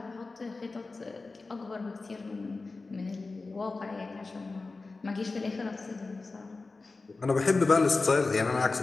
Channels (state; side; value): quieter; right; 3.7 dB